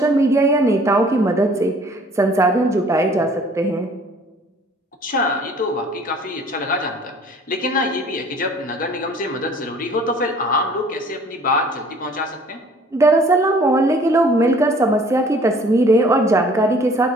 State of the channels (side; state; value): both; normal; correlation 0.53